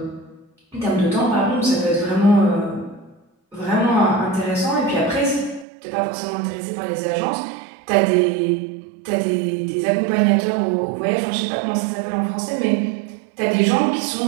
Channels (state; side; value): drops out; left; at 5.7 s